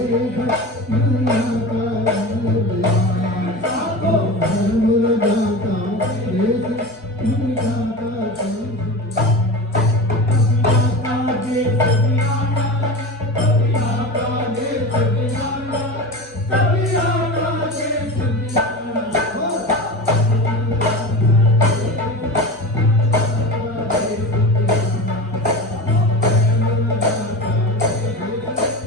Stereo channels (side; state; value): both; normal; correlation 0.28